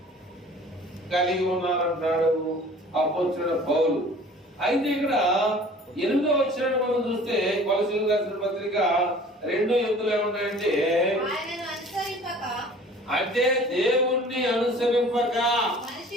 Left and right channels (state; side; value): normal; both; correlation 0.48